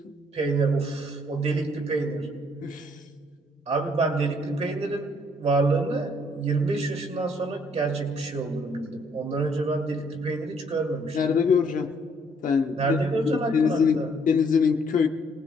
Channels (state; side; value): normal; both; correlation 0.66